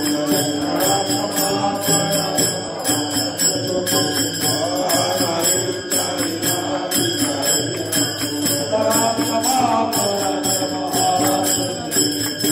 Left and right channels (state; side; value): identical; both; correlation 1.00